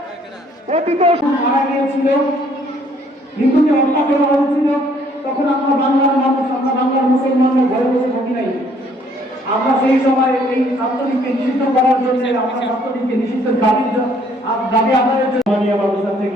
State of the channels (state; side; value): normal; both; correlation 0.63